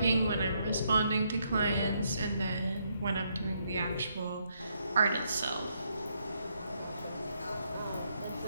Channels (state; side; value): inverted; both; correlation -0.76